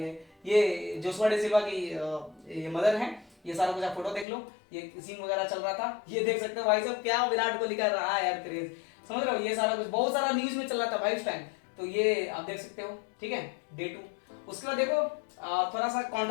ये जोशुआ डी सिल्वा की ये मदर है। ये सारा कुछ आप फोटो देख लो, ये सीन वगैरह चल रहा था, ये देख सकते हो भाई साहब क्या विराट कोहली का रहा है यार क्रेज, समझ रहे हो। ये सारा कुछ बहुत सारा न्यूज में चल रहा था भाई उस टाइम, तो ये आप देख सकते हो, ठीक है, डे 2। उसके बाद देखो थोड़ा सा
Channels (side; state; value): right; drops out; at 4.2 s